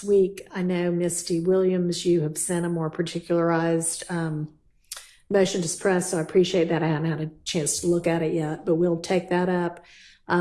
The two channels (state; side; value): identical; both; correlation 1.00